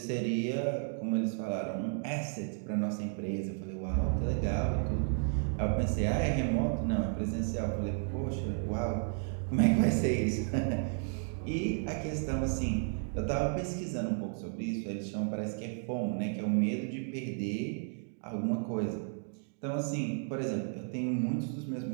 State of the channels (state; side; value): silent; left; 56 dB below the other